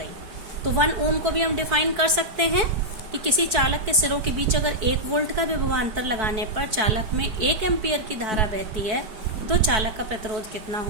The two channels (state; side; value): late; left; 4.6 ms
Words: तो 1 ओम को भी हम डिफाइन कर सकते हैं कि किसी चालक के सिरों के बीच अगर 1 वोल्ट का विभवांतर लगाने पर चालक में 1 एम्पियर की धारा बहती है, तो चालक का प्रतिरोध कितना